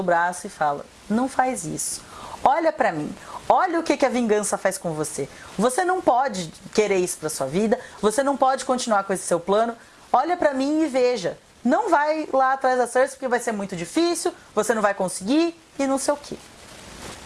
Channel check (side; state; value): both; identical; correlation 1.00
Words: braço e fala: não faz isso. Olha pra mim. Olha o que a vingança faz com você. Você não pode querer isso pra sua vida. Você não pode continuar com esse seu plano. Olha pra mim e veja. Não vai lá atrás da Cersei porque vai ser muito difícil. Você não vai conseguir e não sei o quê.